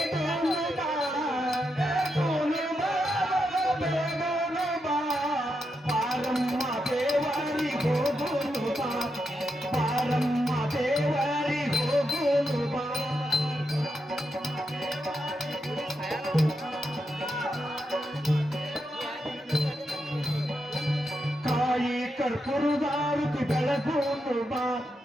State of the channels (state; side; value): normal; both; correlation 0.84